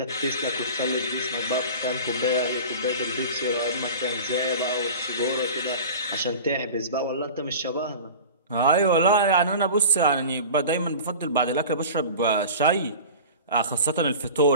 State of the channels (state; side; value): inverted; both; correlation -0.36